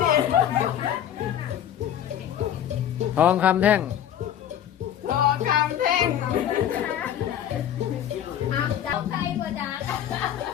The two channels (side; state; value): right; quieter; 10.3 dB